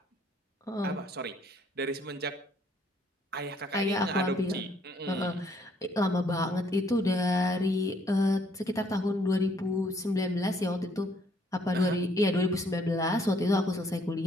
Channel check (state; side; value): normal; both; correlation 0.66